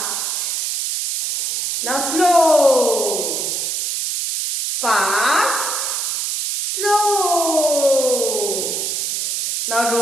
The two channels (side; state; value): right; noise; hiss, 1 dB below the sound